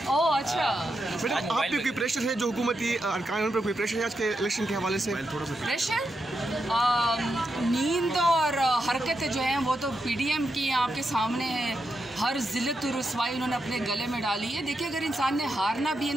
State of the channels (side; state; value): both; normal; correlation 0.85